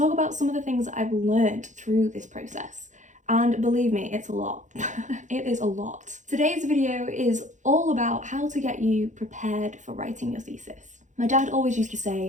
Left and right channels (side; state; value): left; late; 0.36 ms